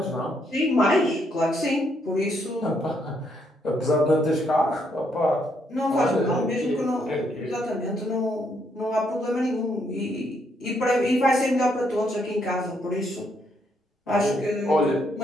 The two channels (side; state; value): both; normal; correlation 0.74